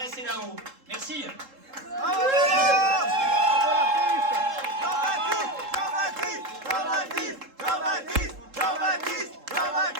c'est là-haut. Merci. Bravo.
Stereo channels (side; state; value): left; late; 3.7 ms